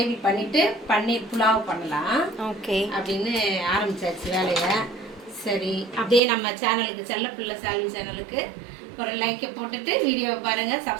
பண்ணிவிட்டு பன்னீர் புலாவ் பண்ணலாம் ஓகே அப்படின்னு ஆரம்பிச்சாச்சு வேலையை. சரி, அப்படியே நம்ம சேனலுக்கு செல்லப்பிள்ளை சால்வி சேனலுக்கு ஒரு லைக்கை போட்டுட்டு வீடியோவை பாருங்கள்,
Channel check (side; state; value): left; drops out; at 6.2 s